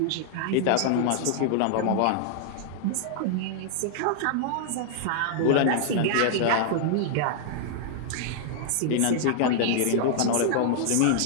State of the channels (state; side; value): different; both; correlation -0.01